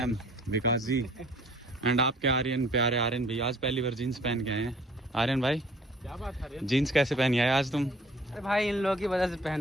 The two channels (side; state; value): both; normal; correlation 0.54